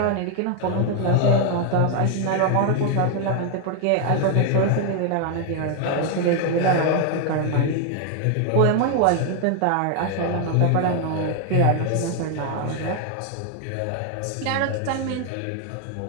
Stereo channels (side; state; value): both; different; correlation 0.00